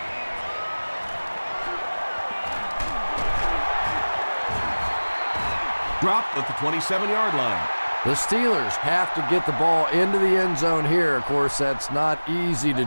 Dropped at the 27-yard line. The Steelers have to get the ball into the end zone here. Of course, that's not easy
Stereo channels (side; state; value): both; inverted; correlation -1.00